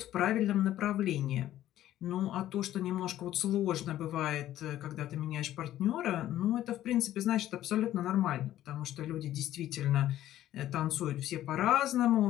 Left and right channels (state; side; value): quieter; right; 13.1 dB